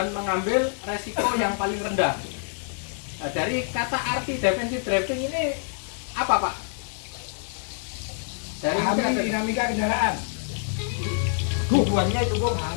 mengambil resiko yang paling rendah. Nah, dari kata arti defensive driving ini apa Pak? Dari dinamika kendaraan. Tujuannya itu kok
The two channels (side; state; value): right; silent; 61 dB below the other